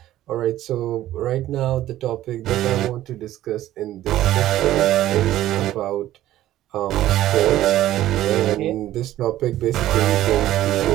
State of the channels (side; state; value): left; quieter; 13.9 dB